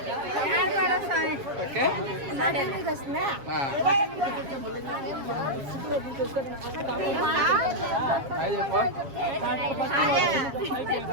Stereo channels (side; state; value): left; late; 7.3 ms